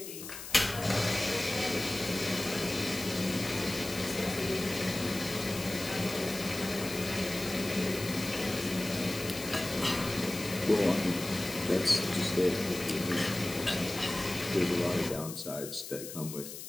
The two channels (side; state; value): left; noise; hiss, 10 dB below the sound